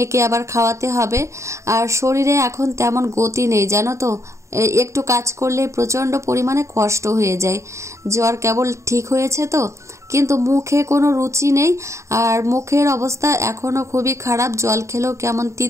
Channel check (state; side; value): late; left; 0.14 ms